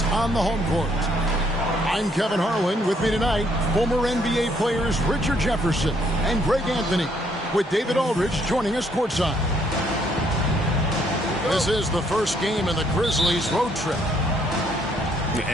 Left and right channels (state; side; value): normal; both; correlation 0.68